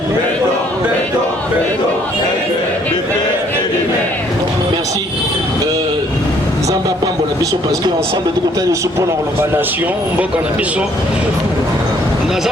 Merci. Zamba Pambo la biso parce qu'ensemble de côté de support dans la nation, Mboka na biso.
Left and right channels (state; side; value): normal; both; correlation 0.63